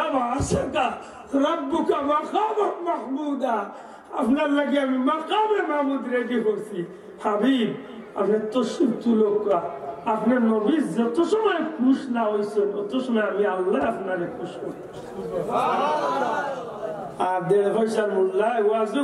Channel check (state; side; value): identical; both; correlation 1.00